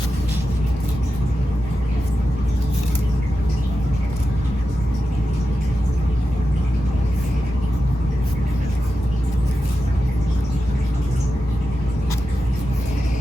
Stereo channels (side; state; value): both; normal; correlation 0.90